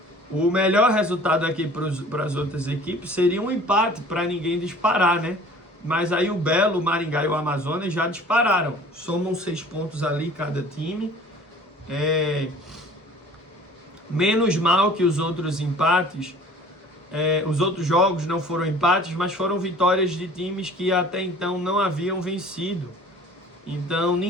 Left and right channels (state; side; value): normal; both; correlation 0.48